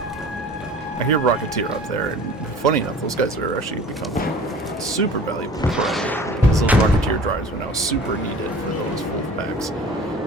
I hear Rocketeer up there, and funny enough, those guys are actually becoming super valuable because those Rocketeer drives are now super needed for those Wolfpacks.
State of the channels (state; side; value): normal; both; correlation 0.44